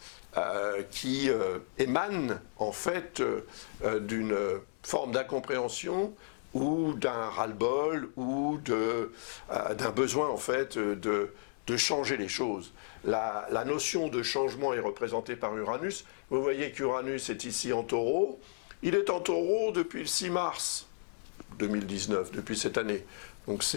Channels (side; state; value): right; silent; digital silence